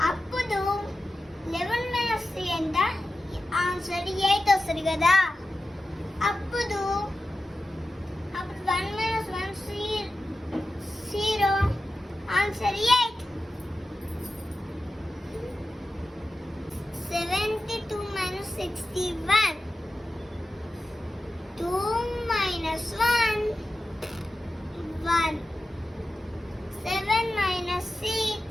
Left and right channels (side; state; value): both; normal; correlation 0.93